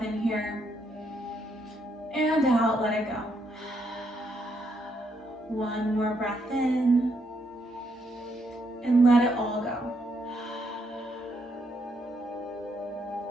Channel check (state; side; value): normal; both; correlation 0.76